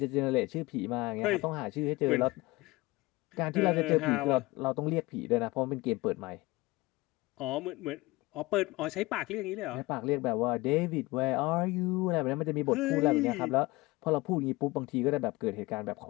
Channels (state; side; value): quieter; right; 21.8 dB